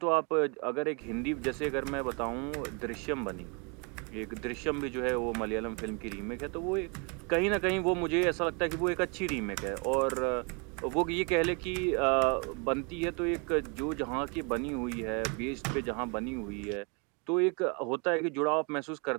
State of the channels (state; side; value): quieter; left; 33.3 dB